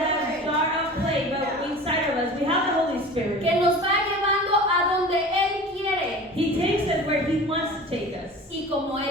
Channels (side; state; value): both; normal; correlation 0.38